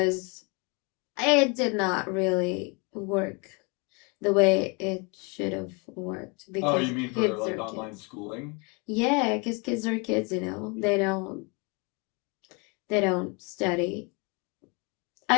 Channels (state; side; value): quieter; right; 31.2 dB